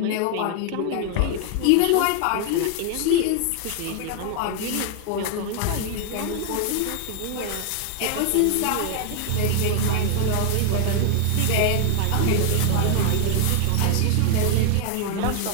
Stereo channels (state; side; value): different; both; correlation 0.00